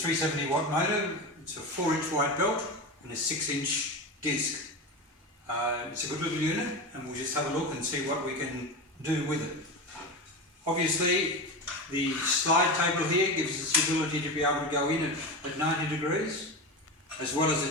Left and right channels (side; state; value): both; normal; correlation 0.22